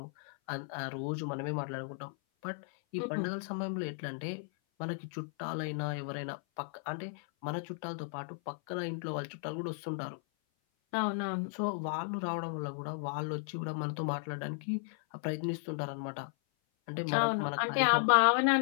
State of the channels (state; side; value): silent; right; 55 dB below the other